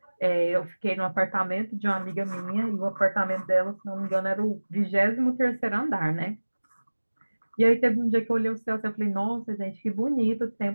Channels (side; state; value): both; inverted; correlation -1.00